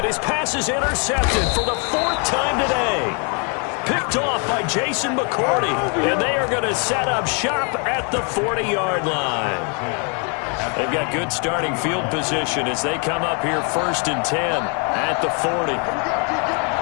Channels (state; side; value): quieter; right; 37.6 dB